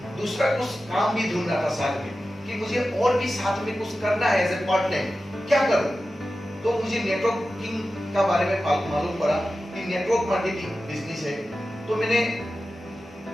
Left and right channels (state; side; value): normal; both; correlation 0.93